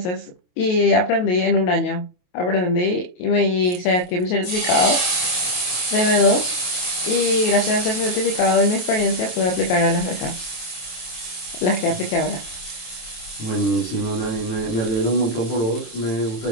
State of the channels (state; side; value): late; right; 27 ms